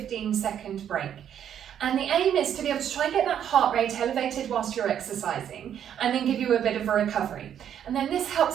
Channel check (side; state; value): left; quieter; 9.5 dB